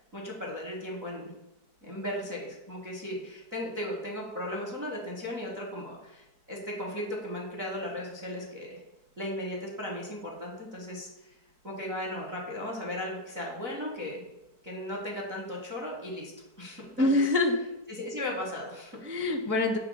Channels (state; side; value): late; left; 4.6 ms